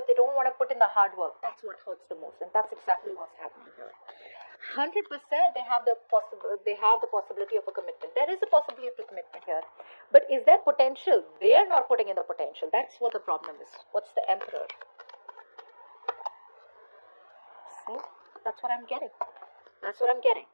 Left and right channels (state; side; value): inverted; both; correlation -1.00